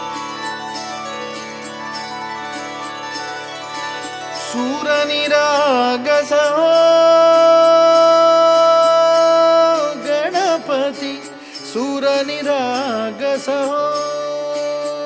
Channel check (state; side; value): identical; both; correlation 1.00